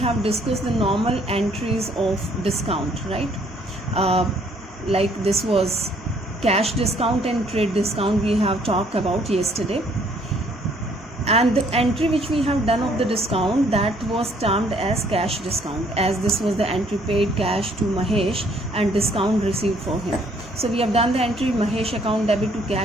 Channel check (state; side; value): normal; both; correlation 0.64